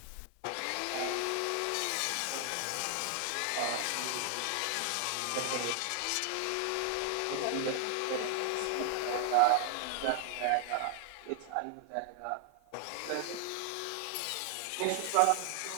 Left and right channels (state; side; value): different; both; correlation 0.00